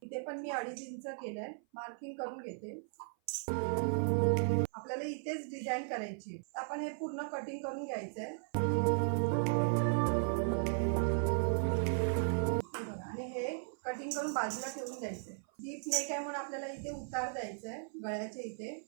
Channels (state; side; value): silent; left; 53 dB below the other